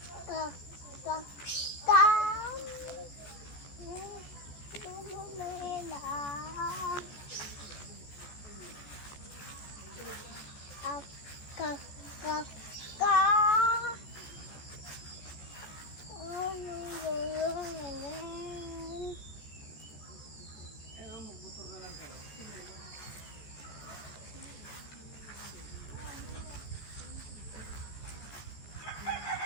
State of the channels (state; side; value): late; right; 14 ms